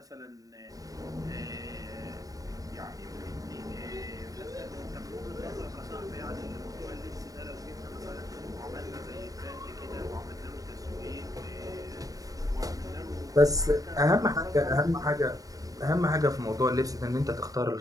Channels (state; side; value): late; left; 0.17 ms